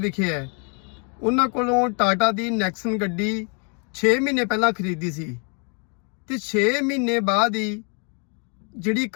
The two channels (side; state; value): right; quieter; 38.1 dB